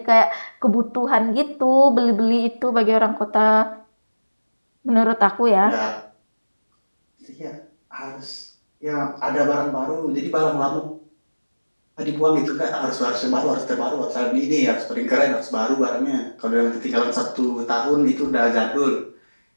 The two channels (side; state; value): both; inverted; correlation -1.00